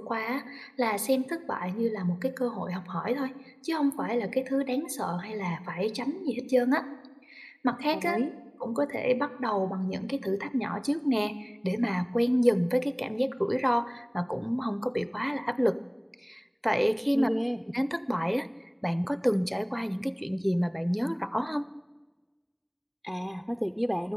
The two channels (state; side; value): identical; both; correlation 1.00